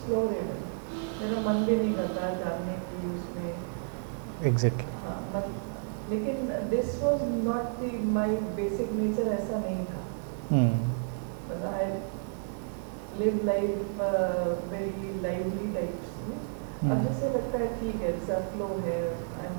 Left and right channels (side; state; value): left; silent; digital silence